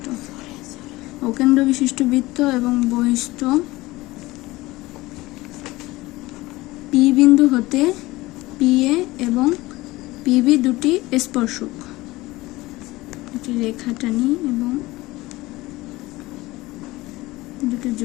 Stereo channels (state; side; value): quieter; right; 19.6 dB